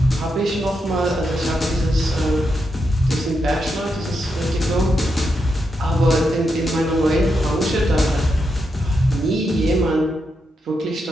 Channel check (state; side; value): normal; both; correlation 0.84